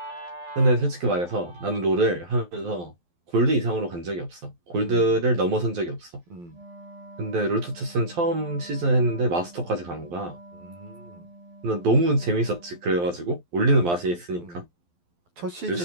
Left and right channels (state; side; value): late; left; 12 ms